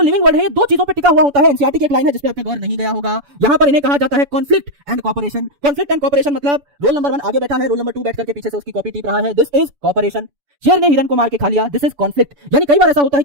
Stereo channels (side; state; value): left; late; 7.0 ms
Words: लिविंग वर्ल्ड है, ये 2 चीजों पे टिका हुआ होता है। एनसीईआरटी की एक लाइन है जिस पे आपका गौर नहीं गया होगा। यहां पर इन्हें कहा जाता है conflict and cooperation. Conflict and cooperation मतलब रोल नंबर 1 आगे बैठा है, रोल नंबर 2 बैठ करके पीछे से उसकी कॉपी टीप रहा है। This is cooperation. शेर ने हिरन को मार के खा लिया, दिस इज कॉन्फ्लिक्ट। यानी कई बार ऐसा होता है